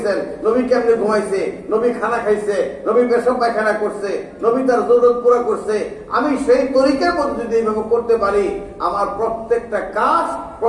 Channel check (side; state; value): both; identical; correlation 1.00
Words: নবী কেমনে ঘুমাইছে, নবী খানা খাইছে, নবী পেশাব পায়খানা করছে, নবী তার জরুরত পুরা করছে। আমি সেই তরিকার মধ্যে যদি এইভাবে করতে পারি, আমার প্রত্যেকটা কাজ,